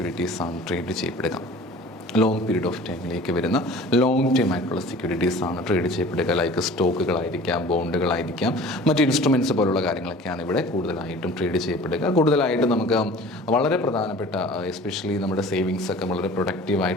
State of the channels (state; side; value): normal; both; correlation 0.44